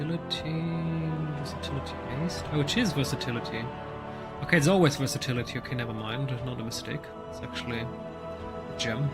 Versatility based. Oh, it is versatility. Okay, it's always versatility. Okay, never mind. Not a mistake. It's actually a gem.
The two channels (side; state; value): both; identical; correlation 1.00